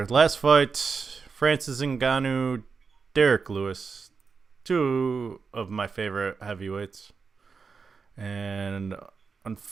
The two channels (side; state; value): left; quieter; 5.2 dB